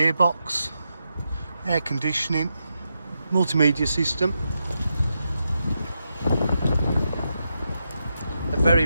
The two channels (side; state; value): both; inverted; correlation -0.85